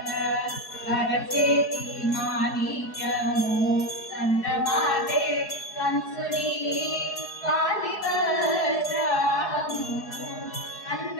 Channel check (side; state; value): right; late; 4.7 ms